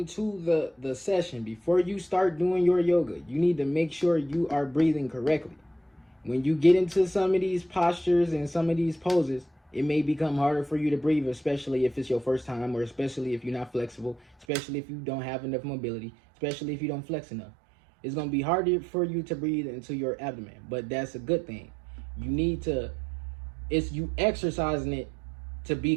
the session, before you start doing your yoga, you need to make sure you are breathing correctly. When you get into some of these postures and some of these poses, it may become harder for you to breathe, especially if it's your first time, or especially if you're not flexible, especially if you don't have enough mobility, especially if you don't flex enough. It's going to be harder for you to breathe into your abdomen, but that's a good thing. You need to, it's you exercising it to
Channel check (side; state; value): left; drops out; at 14.5 s